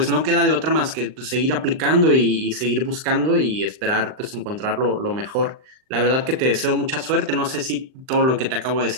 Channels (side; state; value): left; late; 39 ms